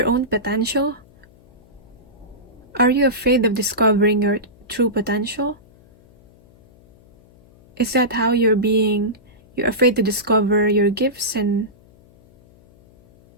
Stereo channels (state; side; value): noise; left; hum, 28 dB below the sound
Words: own potential? Are you afraid of discovering your true potential? Is that how you're afraid to discover your gifts and